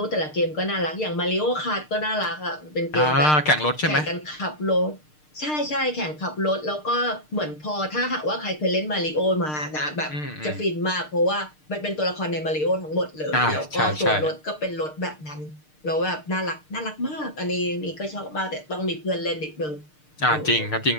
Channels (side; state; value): right; late; 6.6 ms